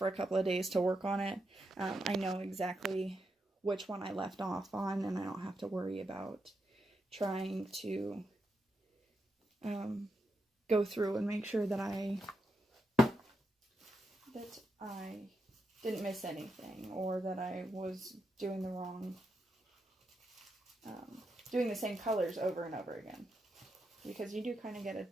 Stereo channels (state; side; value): normal; both; correlation 0.84